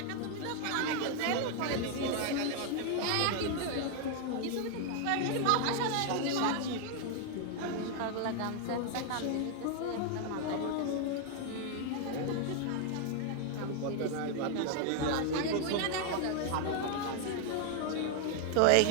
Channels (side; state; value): both; different; correlation 0.00